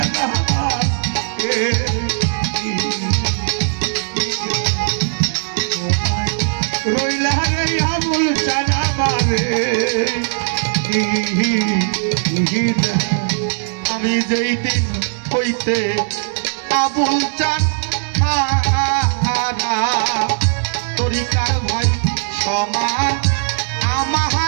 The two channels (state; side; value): silent; left; digital silence